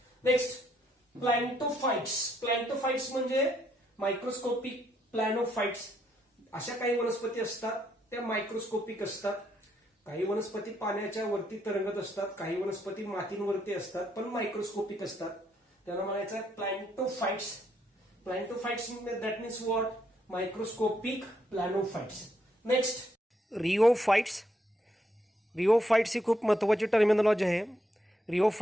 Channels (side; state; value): both; normal; correlation 0.75